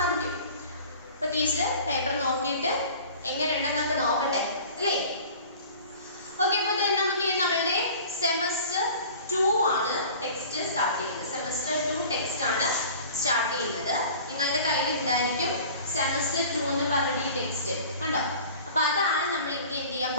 അപ്പോൾ ടീച്ചർ പേപ്പർ നോക്കിയിട്ട് എങ്ങനെയുണ്ടെന്നൊക്കെ നോക്കട്ടെ അല്ലേ? ഓക്കെ, അപ്പോൾ നമുക്ക് നമ്മളുടെ സെമസ്റ്റർ 2 ആണ് ടെക്സ്റ്റ് സ്റ്റാർട്ട് ചെയ്യുന്നത്. സെമസ്റ്റർ 2 ടെക്സ്റ്റ് ആണ് സ്റ്റാർട്ട് ചെയ്യുന്നത്. നിങ്ങളുടെ കയ്യിൽ ഉണ്ടായിരിക്കും സെമസ്റ്റർ 2 എന്ന് പറഞ്ഞിട്ട് ഈ ടെക്സ്റ്റ് കണ്ടോ? അപ്പോൾ അതാണ് നമ്മൾ ഇനി എന്ത് ചെയ്യാൻ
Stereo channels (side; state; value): both; inverted; correlation -0.44